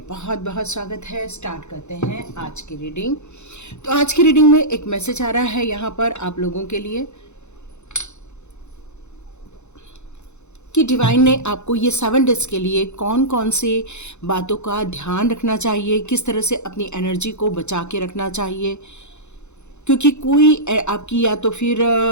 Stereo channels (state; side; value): late; right; 0.82 ms